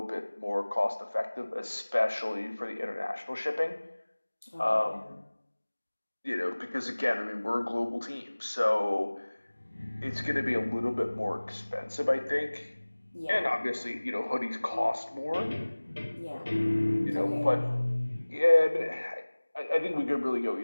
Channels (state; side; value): inverted; both; correlation -1.00